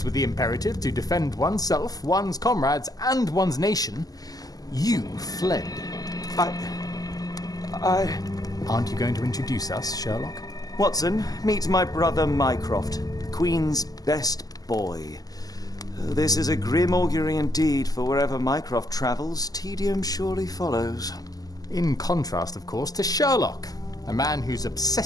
with the imperative to defend oneself, one's comrades, and one's nation, you fled. Aren't you going to introduce us, Sherlock? Watson, meet my brother Mycroft, the Queen's best boy. This is a grim augury indeed, for wherever Mycroft travels, tedium surely follows. In contrast, of course, to Sherlock, a man whose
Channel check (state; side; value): late; right; 0.18 ms